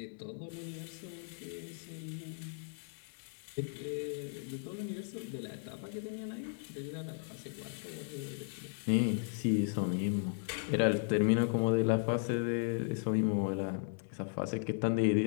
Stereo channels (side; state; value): right; silent; digital silence